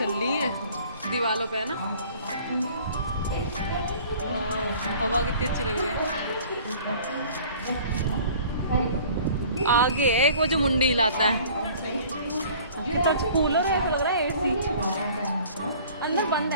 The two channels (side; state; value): both; inverted; correlation -0.49